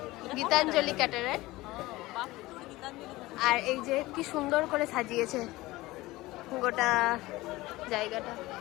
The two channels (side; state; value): right; quieter; 19.2 dB